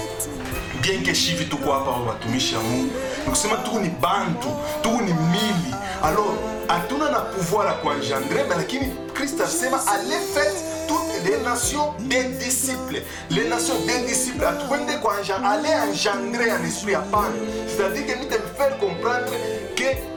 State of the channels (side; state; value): both; identical; correlation 1.00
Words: Bien que shivi tuko hapa watumishi ya Mungu. Nikusema tuko ni bantu, tuko ni mili. Alors hatuna na pouvoir à kuengendrer, mais lakini Christ asema allez faites toutes les nations des disciples. Les nations des disciples atuende kwa aller engendrer un esprit à pan. C'est-à-dire que nous devons faire comprendre que